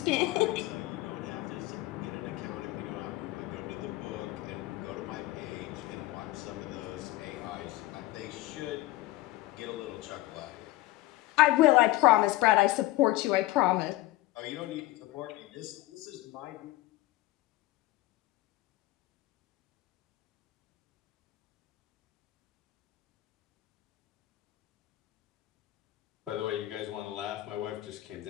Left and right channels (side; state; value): right; quieter; 17.6 dB